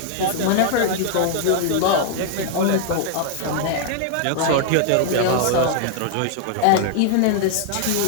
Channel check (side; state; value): both; different; correlation 0.00